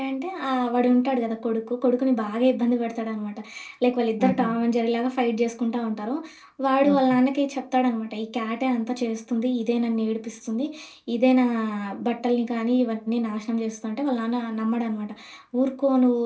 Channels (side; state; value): both; identical; correlation 1.00